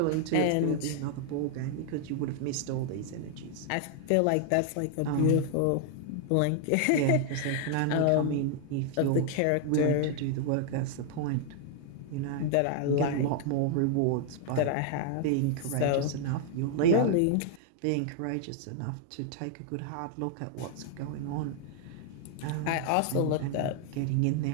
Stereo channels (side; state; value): both; different; correlation 0.00